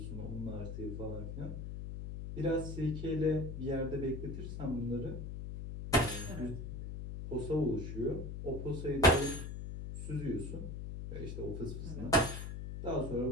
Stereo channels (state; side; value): noise; left; hum, 6 dB below the sound